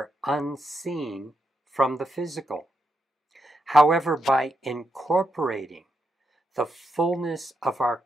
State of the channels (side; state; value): both; normal; correlation 0.82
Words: unseen from the physical. However, by incorporating the fullness of our